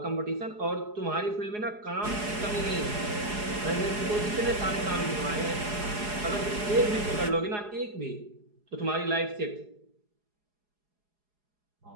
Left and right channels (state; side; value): late; left; 4.8 ms